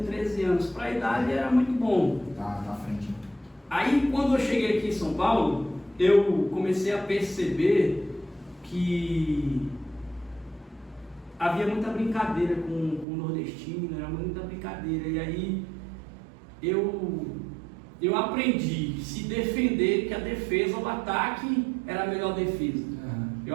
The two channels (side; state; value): left; drops out; at 13.1 s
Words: 13 anos. Para a idade era muito bom. Tá na frente. Aí quando eu cheguei aqui em São Paulo, eu comecei a perceber que havia muita brincadeira com o nordestino, era muita brincadeira. E aí eu aprendi a se defender, que a defesa, o ataque era a melhor defesa.